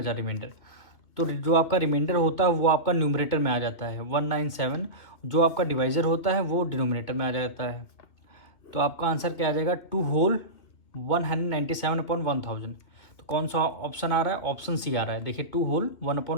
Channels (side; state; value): right; late; 2.5 ms